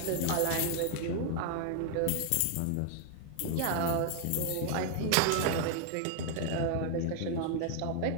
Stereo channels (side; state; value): both; different; correlation 0.00